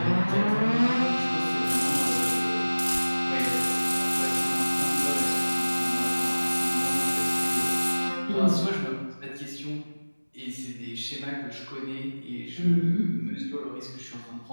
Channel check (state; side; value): inverted; both; correlation -1.00